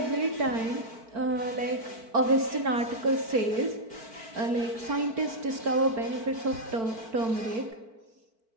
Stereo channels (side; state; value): left; late; 4.5 ms